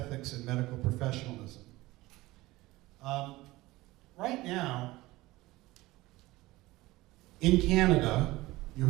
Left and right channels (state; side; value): quieter; left; 19.2 dB